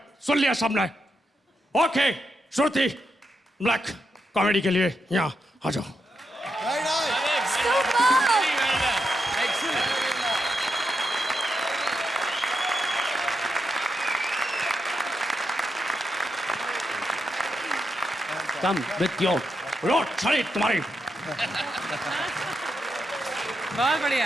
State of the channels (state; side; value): normal; both; correlation 0.84